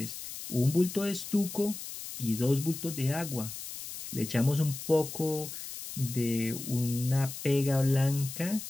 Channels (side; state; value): left; noise; hiss, 9 dB below the sound